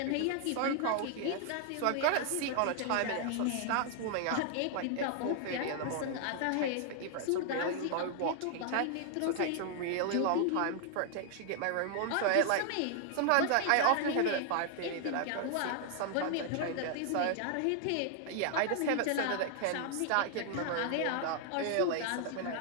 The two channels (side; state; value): both; different; correlation 0.00